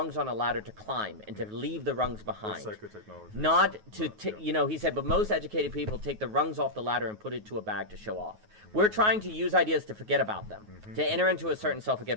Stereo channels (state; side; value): late; left; 9.4 ms